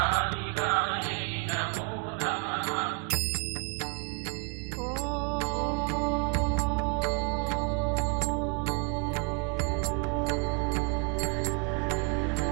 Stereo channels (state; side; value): quieter; left; 34.2 dB